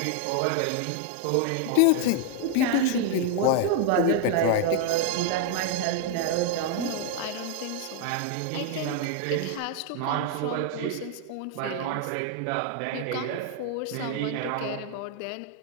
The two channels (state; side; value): different; both; correlation 0.00